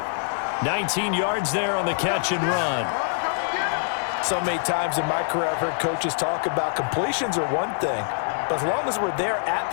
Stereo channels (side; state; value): right; silent; digital silence